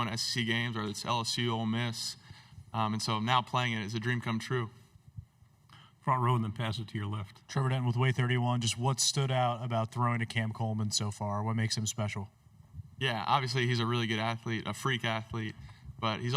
to SEC games, whether it's LSU, Ole Miss, and so now playing it is a dream come true. Front row, and then pass it to your left. Trevor Denton with Way 31. Just what stood out about throwing to Cam Coleman so far? What makes him special? Yeah, obviously he's a really good athlete, a freak athlete, but he's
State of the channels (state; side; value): identical; both; correlation 1.00